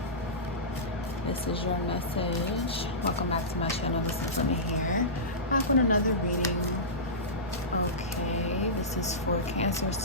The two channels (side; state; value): both; normal; correlation -0.18